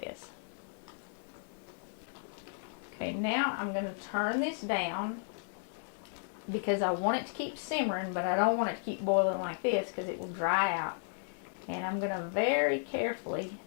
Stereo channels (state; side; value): silent; right; 55 dB below the other